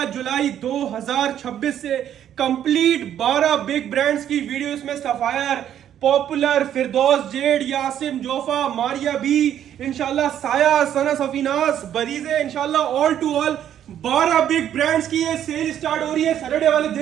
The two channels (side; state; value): left; quieter; 10.3 dB